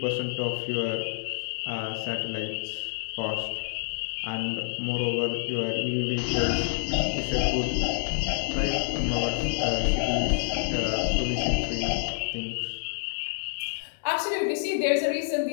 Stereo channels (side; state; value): right; silent; digital silence